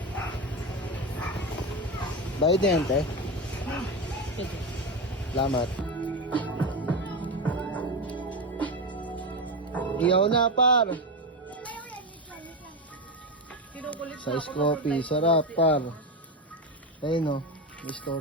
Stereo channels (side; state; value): both; normal; correlation 0.16